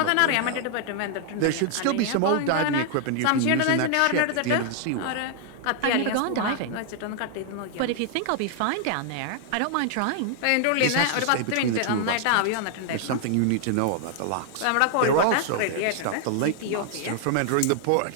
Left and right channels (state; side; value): different; both; correlation 0.00